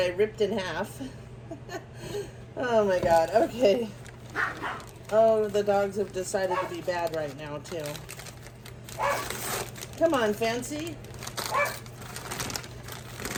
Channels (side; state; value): both; identical; correlation 1.00